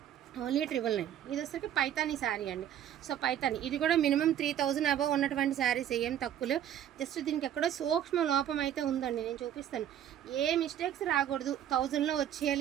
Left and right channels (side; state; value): left; quieter; 10.5 dB